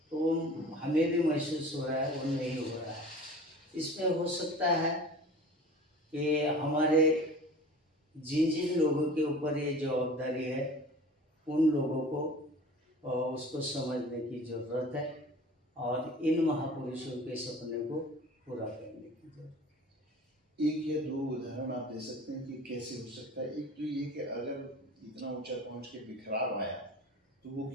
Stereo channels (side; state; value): both; normal; correlation 0.41